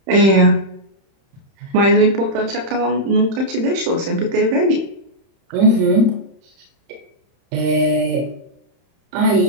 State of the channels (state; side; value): late; left; 31 ms